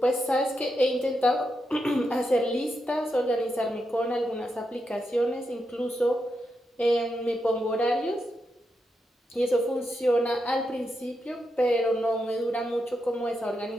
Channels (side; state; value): both; normal; correlation 0.85